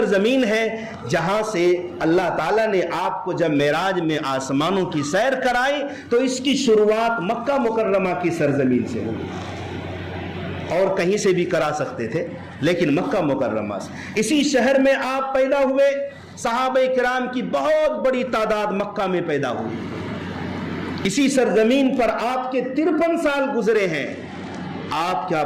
ہے جہاں سے اللہ تعالیٰ نے آپ کو جب معراج میں آسمانوں کی سیر کرائی تو اس کی شروعات مکہ مکرمہ کی سرزمین سے ہوئی، اور کہیں سے بھی کرا سکتے تھے لیکن مکہ مکرمہ سے۔ اسی شہر میں آپ پیدا ہوئے، صحابہ کرام کی بہت بڑی تعداد مکہ میں پیدا ہوئی، اسی سرزمین پر آپ کے 53 سال گزرے ہیں۔ آپ کیا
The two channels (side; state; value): both; identical; correlation 1.00